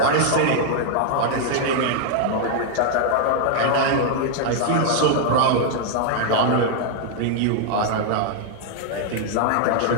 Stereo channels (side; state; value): both; different; correlation 0.00